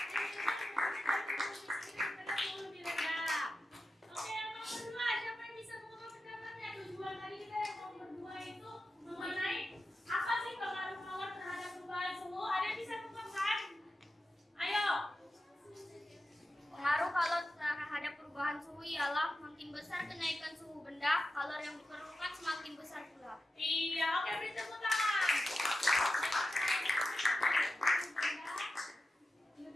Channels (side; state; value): both; normal; correlation 0.91